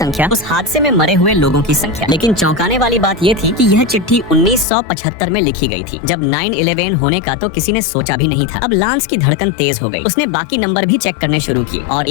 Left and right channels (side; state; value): right; drops out; at 4.7 s